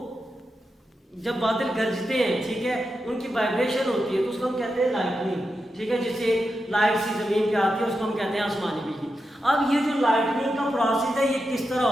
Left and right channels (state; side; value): normal; both; correlation 0.88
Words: जब बादल गरजते हैं, ठीक है, उनकी वाइब्रेशन होती है तो उसको हम कहते हैं लाइटनिंग, ठीक है, जिससे लाइट सी जमीन पे आती है उसको हम कहते हैं आसमानी बिजली। अब ये जो लाइटनिंग का प्रोसेस है ये किस तरह